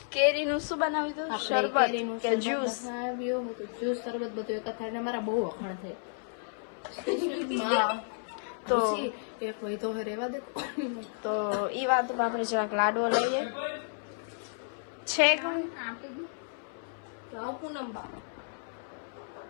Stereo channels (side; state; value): right; silent; 57 dB below the other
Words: કેરીનું શું બનાવ્યું? શરબત કે જ્યુસ? જ્યુસ શરબત બધું એક થાય. મારા બહુ વખાણ થાય તો એક હોય તો રેવા દે. તો ઈ વાત આપણે જરાક લાડવો લઈએ છે પૂનમ બા